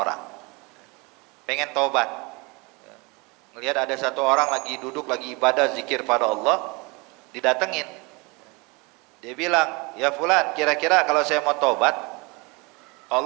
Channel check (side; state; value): left; quieter; 27.7 dB